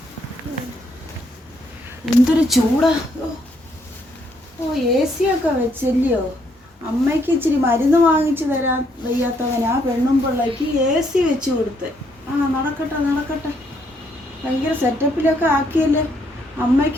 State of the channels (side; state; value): both; normal; correlation 0.72